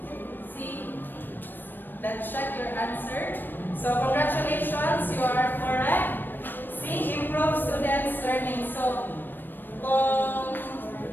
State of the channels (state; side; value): late; right; 0.093 ms